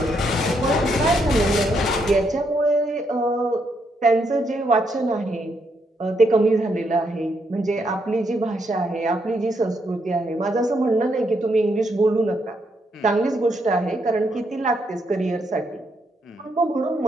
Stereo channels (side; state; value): both; normal; correlation 0.76